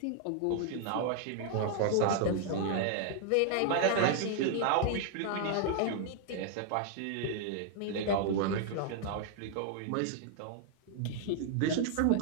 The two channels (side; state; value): both; different; correlation 0.00